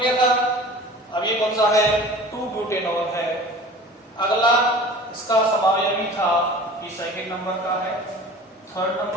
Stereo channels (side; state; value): both; normal; correlation 0.41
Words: था। अब ये कौन सा है? 2-ब्यूटेनॉल है। अगला इसका समावयवी था, ये सेकंड नंबर का है। थर्ड